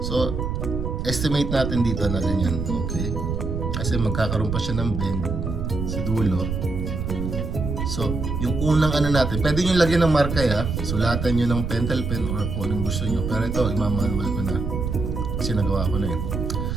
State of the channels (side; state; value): right; noise; rumble, 3 dB below the sound